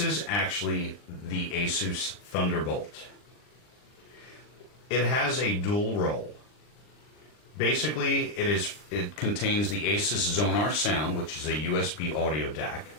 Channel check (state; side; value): late; right; 39 ms